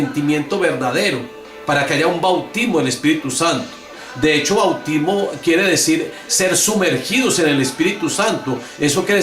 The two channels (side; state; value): both; identical; correlation 1.00